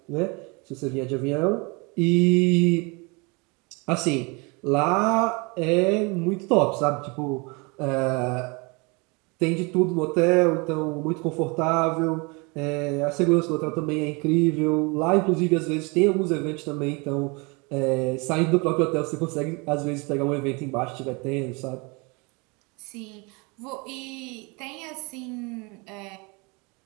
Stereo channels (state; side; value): quieter; left; 29.1 dB